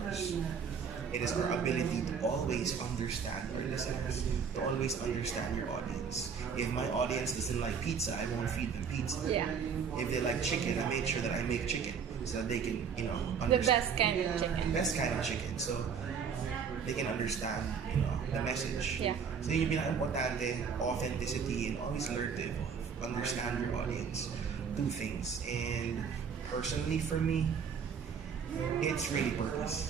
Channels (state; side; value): quieter; left; 6.5 dB